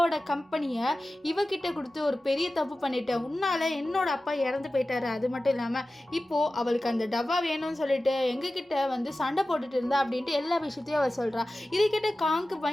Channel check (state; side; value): normal; both; correlation 0.95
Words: கம்பெனியை இவகிட்ட கொடுத்து ஒரு பெரிய தப்பு பண்ணிட்டேன், உன்னால் என்னோட அப்பா இறந்து போயிட்டாரு, அது மட்டும் இல்லாமல் இப்போது அவளுக்கு அந்த டப்பா வேணும்னு சொல்லிட்டு எங்ககிட்ட வந்து சண்டை போட்டுட்டு இருந்தா அப்படின்ட்டு எல்லா விஷயத்தையும் அவள் சொல்கிறா. இதை கிட்ட காங்க்கு